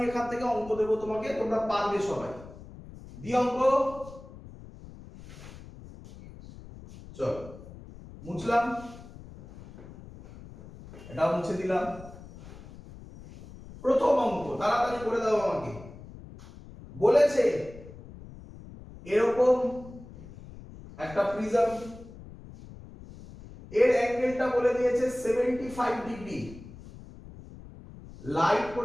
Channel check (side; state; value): left; noise; rumble, 17 dB below the sound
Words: এখান থেকে অঙ্ক দেবো তোমাকে, তোমরা পারবে সবাই। দি অঙ্ক। চলো মুছলাম, এটাও মুছে দিলাম। প্রথম অঙ্ক তাড়াতাড়ি করে দাও আমাকে। বলেছে এরকম একটা প্রিজম, এর অ্যাঙ্গেলটা বলে দিয়েছে 75 ডিগ্রি, লাইট